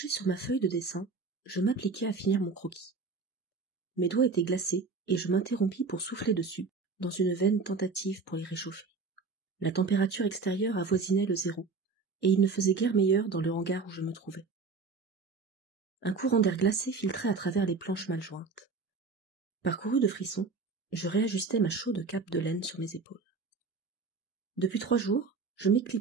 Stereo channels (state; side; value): quieter; left; 4.4 dB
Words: sur ma feuille de dessin, je m'appliquai à finir mon croquis. Mes doigts étaient glacés et je m'interrompis pour souffler dessus, dans une vaine tentative pour les réchauffer. La température extérieure avoisinait le 0, et il ne faisait guère meilleur dans le hangar où je me trouvais. Un courant d'air glacé filtrait à travers les planches mal jointes. Parcouru de frissons, je réajustais ma chaude cape de laine sur mes épaules. Depuis 3 jours, je